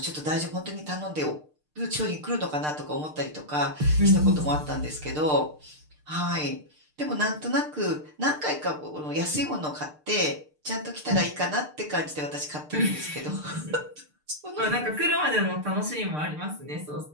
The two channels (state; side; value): late; left; 6.6 ms